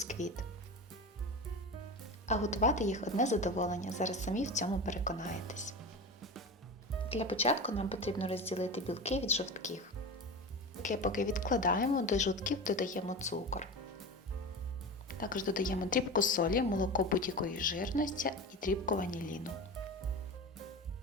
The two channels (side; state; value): both; normal; correlation 0.28